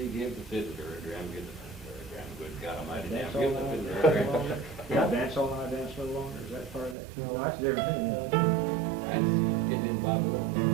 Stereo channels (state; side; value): drops out; left; at 7.0 s